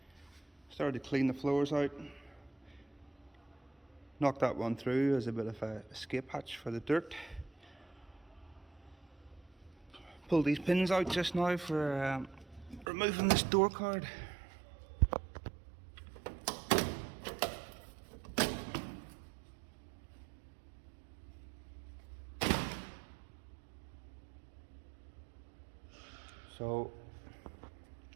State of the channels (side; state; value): left; drops out; at 12.9 s